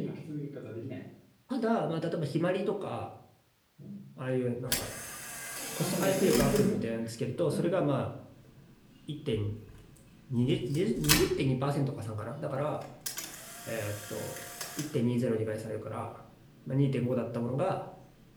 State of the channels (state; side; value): identical; both; correlation 1.00